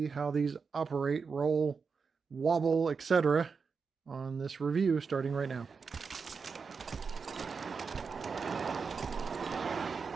how these operate, roll, wobble, etc. on this review starting right now.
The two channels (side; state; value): left; quieter; 5.3 dB